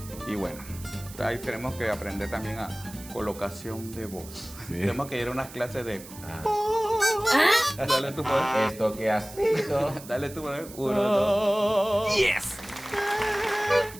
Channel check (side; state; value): right; noise; hiss, 17 dB below the sound